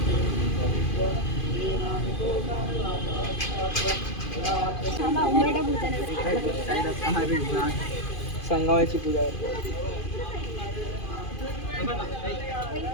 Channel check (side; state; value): right; late; 2.5 ms